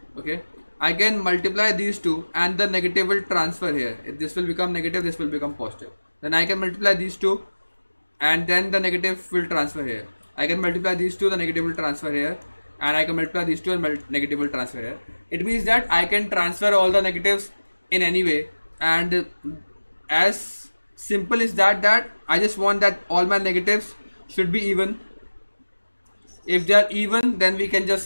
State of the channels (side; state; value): both; inverted; correlation -1.00